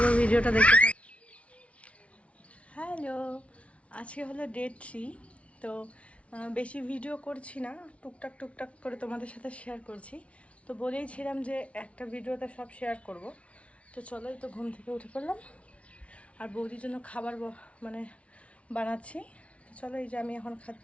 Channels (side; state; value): right; late; 0.063 ms